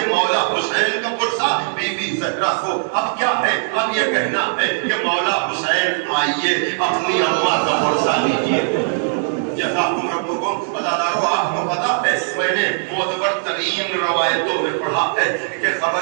مولا حسین کا پرسہ بی بی زہرا کو، اب کیا ہے، اب یہ کہنا ہے کہ مولا حسین آئیے اپنی اماں کا پرسہ لیجیے. جزاکم ربکم. عزادارو آپ کو پتا ہے میں نے معتبر ترین روایتوں میں پڑھا ہے کہ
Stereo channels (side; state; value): left; silent; 66 dB below the other